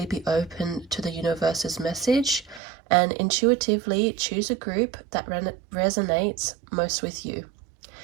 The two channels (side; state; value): left; drops out; at 2.6 s